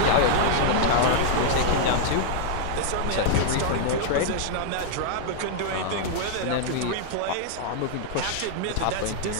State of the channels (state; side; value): different; both; correlation -0.01